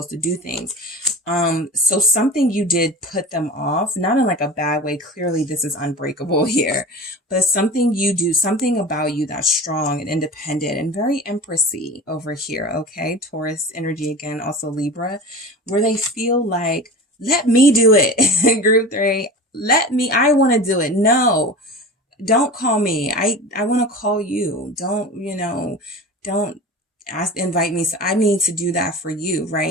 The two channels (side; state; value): both; normal; correlation 0.34